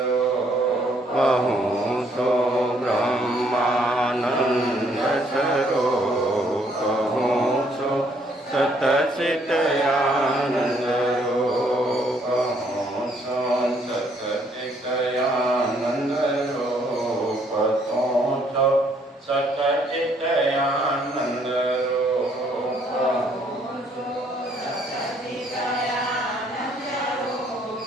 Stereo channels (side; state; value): both; normal; correlation 0.67